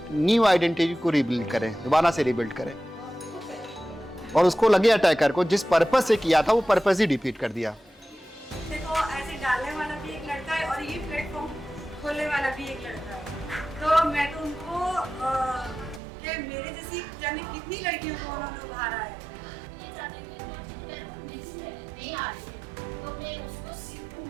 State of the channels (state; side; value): drops out; left; at 16.0 s